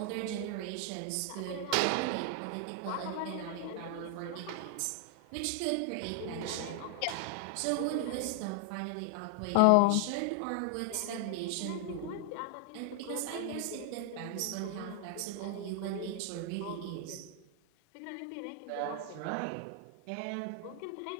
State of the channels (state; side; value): different; both; correlation 0.00